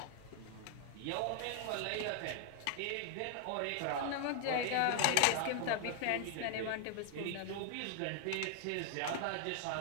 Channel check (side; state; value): both; different; correlation 0.00